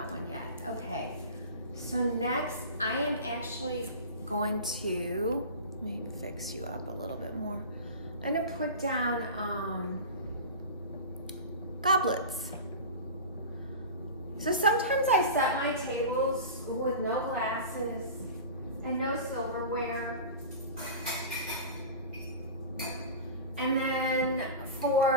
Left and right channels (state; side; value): inverted; both; correlation -0.32